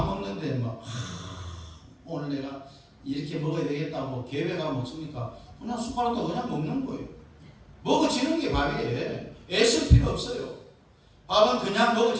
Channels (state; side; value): identical; both; correlation 1.00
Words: 먹는데 오늘 내가 이렇게 먹어야 되겠다고 계획하면 먹습니까? 그냥 숟가락도 그냥 먹는 거예요. 먹어지는 게 밥이에요. 애쓸 필요 없어요. 밥은 그냥